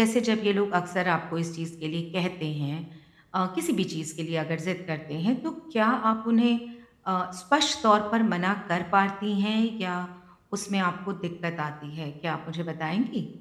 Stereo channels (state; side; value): identical; both; correlation 1.00